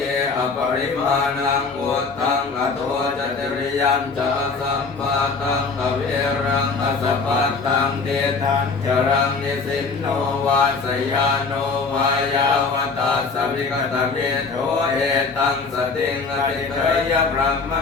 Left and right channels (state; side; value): quieter; right; 4.5 dB